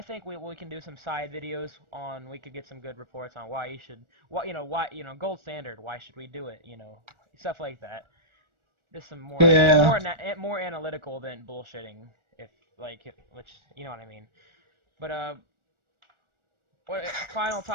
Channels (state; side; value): late; left; 1.4 ms